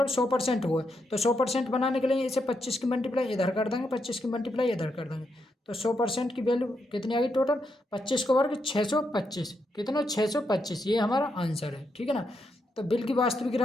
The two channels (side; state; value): both; normal; correlation 0.81